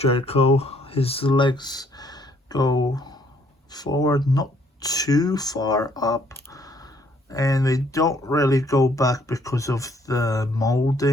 his legs go forward, not too far up, and they don't really go back because of the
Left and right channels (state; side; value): normal; both; correlation 0.65